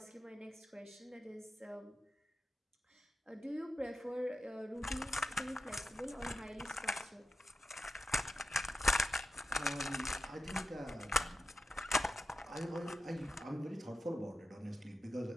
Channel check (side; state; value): both; normal; correlation 0.91